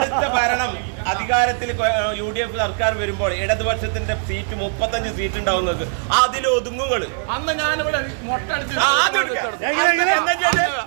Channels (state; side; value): silent; left; 65 dB below the other